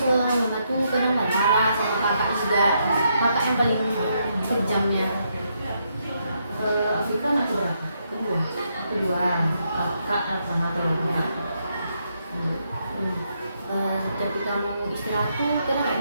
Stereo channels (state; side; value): inverted; both; correlation -0.78